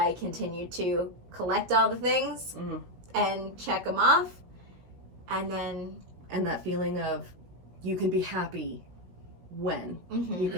continued to collect all the things and check them off. And that feeling of you can be happy when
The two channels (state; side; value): late; left; 17 ms